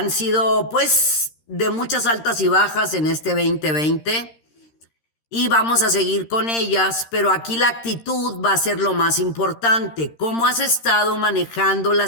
sido, pues, de muchas altas y bajas en este 2020. Y vamos a seguir con ellas, pero aquí la actitud va a ser lo más importante. ¿Cómo has estado manejando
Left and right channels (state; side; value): late; right; 13 ms